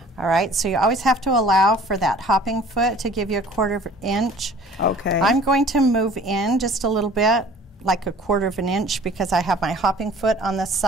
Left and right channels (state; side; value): normal; both; correlation 0.49